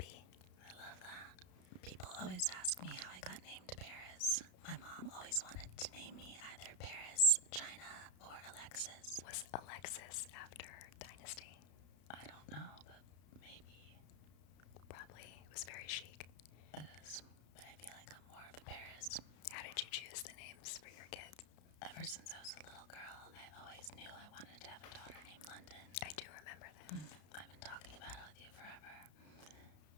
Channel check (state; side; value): late; right; 33 ms